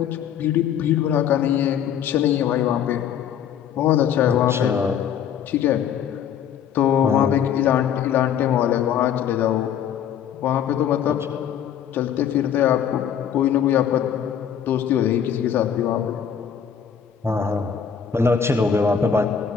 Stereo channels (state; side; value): quieter; right; 8.5 dB